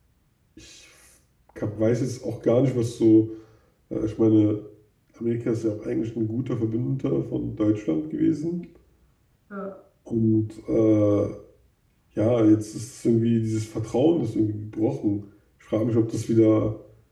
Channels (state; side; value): identical; both; correlation 1.00